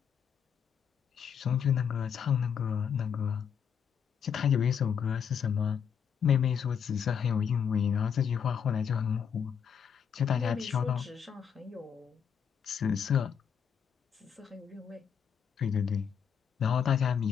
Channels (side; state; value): right; quieter; 7.5 dB